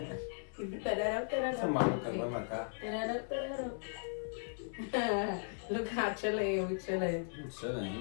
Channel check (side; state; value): right; silent; 53 dB below the other